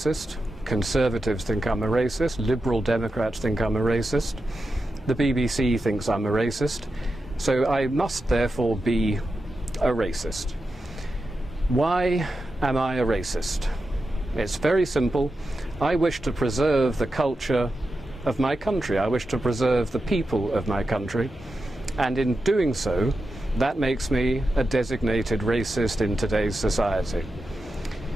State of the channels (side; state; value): both; normal; correlation 0.90